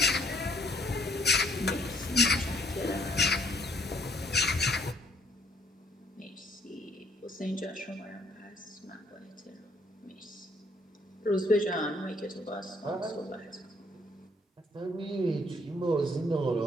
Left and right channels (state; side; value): normal; both; correlation 0.65